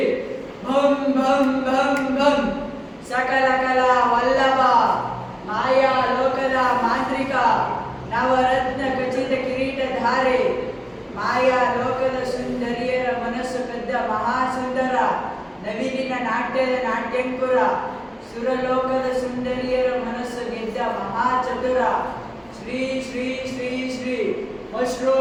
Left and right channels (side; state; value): both; identical; correlation 1.00